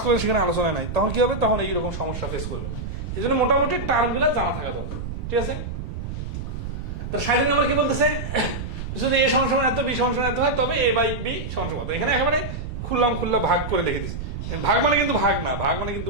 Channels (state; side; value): noise; right; rumble, 6 dB below the sound